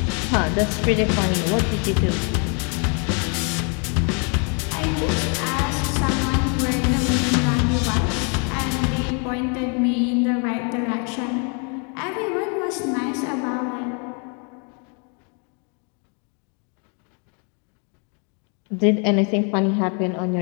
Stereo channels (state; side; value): quieter; right; 37.5 dB